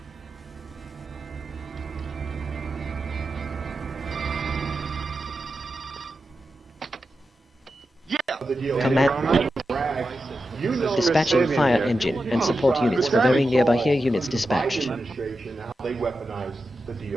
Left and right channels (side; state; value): both; normal; correlation 0.90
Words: Command. Dispatching fire engine and support units for very nearby here units dispatched. How they weaponize the